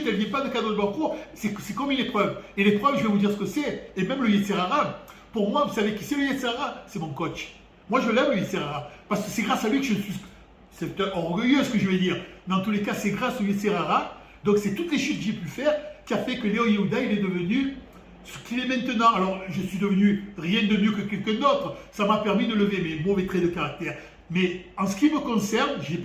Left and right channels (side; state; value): both; identical; correlation 1.00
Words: elle ne vient pas de Kadosh Baruch Hu. C'est comme une épreuve. Et l'épreuve, je vais vous dire ce que c'est. Et même le Yetzirara, pour moi, vous savez qui c'est le Yetzirara? C'est mon coach. Moi, je l'aime, le Yetzirara. Parce que c'est grâce à lui que je suis... C'est orgueilleux ce que je vais dire, mais en tous les cas, c'est grâce au Yetzirara. Donc, c'est toutes les chutes que j'ai pu faire qui a fait que Léo Yehuda, il est devenu ce qu'il est maintenant. Alors, je suis devenu rien de mieux que quelqu'un d'autre. Ça m'a permis de lever mes mauvais traits de caractère. Mais en ce qui me concerne, je n'ai